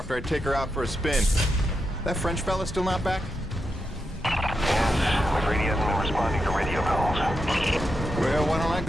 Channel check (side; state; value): both; normal; correlation 0.86